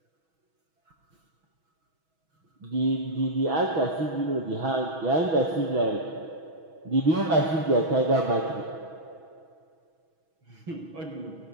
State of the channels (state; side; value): late; left; 6.2 ms